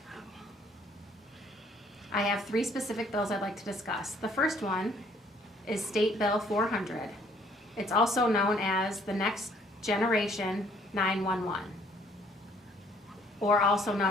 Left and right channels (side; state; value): both; normal; correlation 0.62